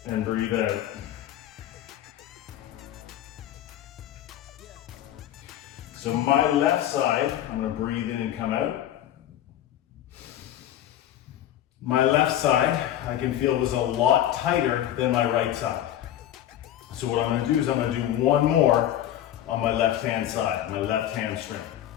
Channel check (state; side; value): quieter; right; 11.9 dB